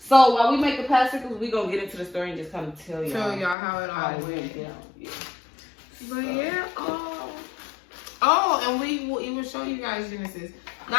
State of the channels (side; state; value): right; drops out; at 3.6 s